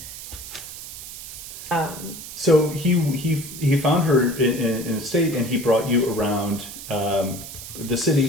So he found her in a state, and he brought you around the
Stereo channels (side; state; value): right; noise; hiss, 11 dB below the sound